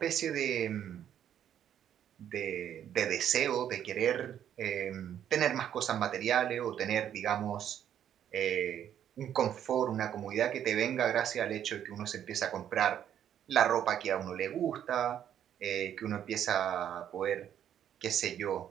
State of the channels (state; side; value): quieter; left; 10.0 dB